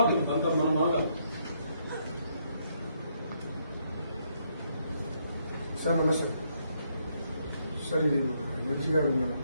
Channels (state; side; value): inverted; both; correlation -0.74